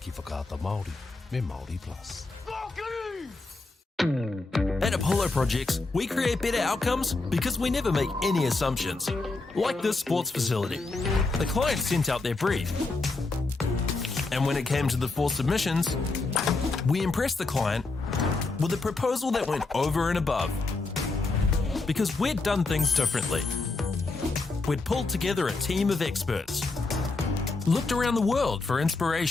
whakaata Māori me Māori Plus. At Apollo Projects, we create better outcomes because we never make any assumptions. Like this sports facility. The client sent out their brief. And when it came to the 4 submissions, we impressed the client with a proposal that went over and above. Because we'd done things differently. We'd pulled together a team of experts, looked around the world for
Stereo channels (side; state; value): right; quieter; 3.5 dB